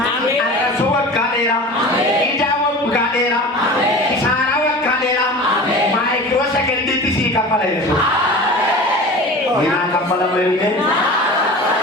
arrasuu waggaa dheeraa ijaa waggaa dheeraa kisaaraa waggaa dheeraa maayikiroo sagantiitti sii kaffala jechuudha. Minaa kaffala malee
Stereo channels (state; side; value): normal; both; correlation 0.36